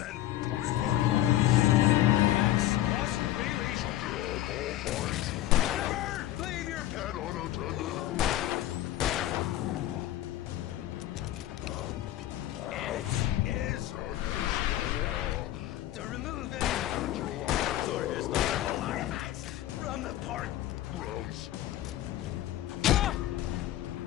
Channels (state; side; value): quieter; right; 13.9 dB